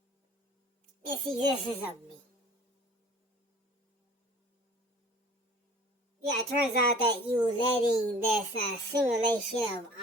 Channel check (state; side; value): normal; both; correlation 0.48